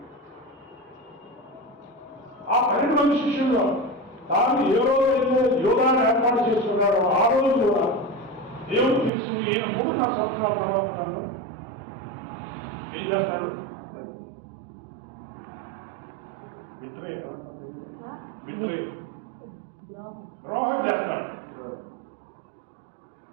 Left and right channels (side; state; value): left; drops out; at 9.1 s